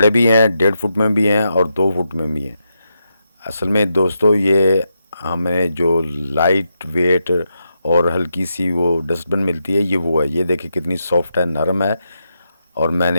भी हैं, 1.5 फुट में भी हैं और 2 फुट में भी हैं। असल में दोस्तों ये हमें जो लाइट वेट और हल्की सी वो डस्टबिन मिलती है, ये वो है। ये देखिए कितनी सॉफ्ट है, नरम है। और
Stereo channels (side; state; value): both; inverted; correlation -0.84